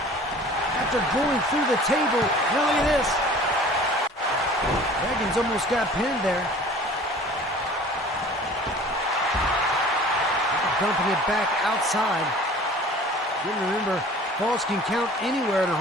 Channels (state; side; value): normal; both; correlation 0.46